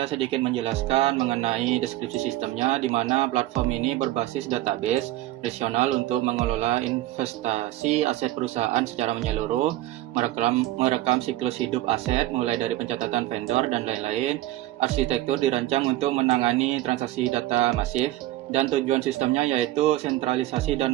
sedikit menjelaskan mengenai deskripsi sistemnya, di mana platform ini berbasis database relasional untuk mengelola investasi aset perusahaan secara menyeluruh, merekam siklus hidup aset mulai dari pencatatan vendor dan lain-lain. Arsitektur dirancang untuk menangani transaksi data masif, dan tujuan sistemnya yaitu sentralisasi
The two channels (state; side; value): quieter; left; 15.9 dB